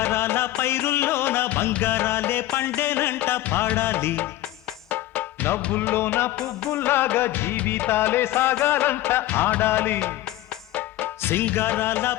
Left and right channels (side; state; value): right; quieter; 15.2 dB